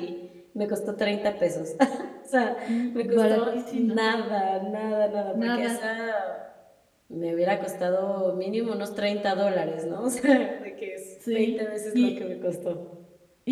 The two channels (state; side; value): identical; both; correlation 1.00